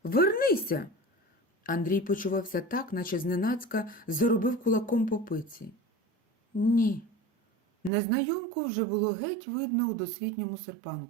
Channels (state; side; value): drops out; left; at 7.9 s